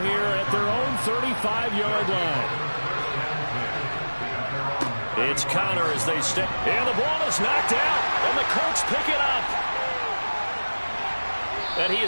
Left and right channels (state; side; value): inverted; both; correlation -1.00